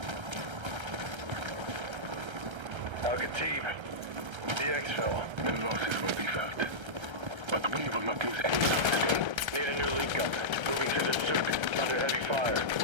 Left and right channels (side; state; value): left; late; 1.3 ms